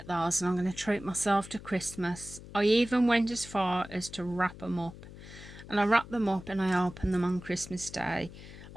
those and I'm going to treat myself to Christmas. I even went as far as to wrap them up, and I wrapped them up and I opened them on Christmas Day.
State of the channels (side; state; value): left; noise; hum, 16 dB below the sound